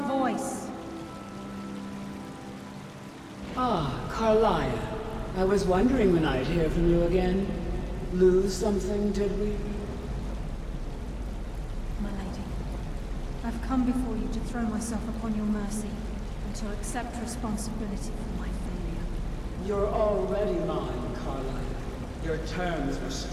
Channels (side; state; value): both; identical; correlation 1.00